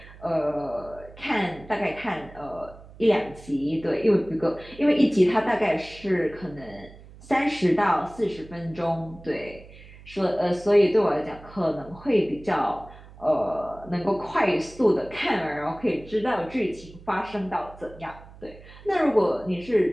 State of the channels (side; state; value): right; noise; hum, 20 dB below the sound